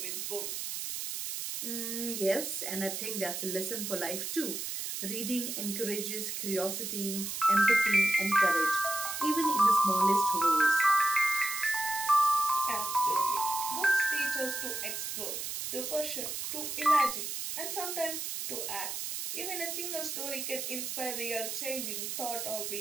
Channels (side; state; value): right; noise; hiss, 4 dB below the sound